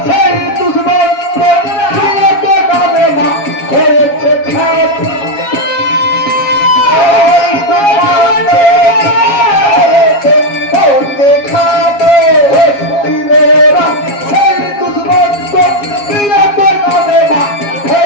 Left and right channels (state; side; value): late; right; 7.3 ms